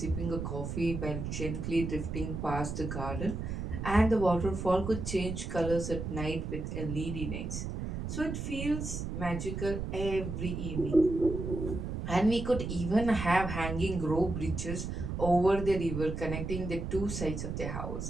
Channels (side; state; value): right; noise; rumble, 4 dB below the sound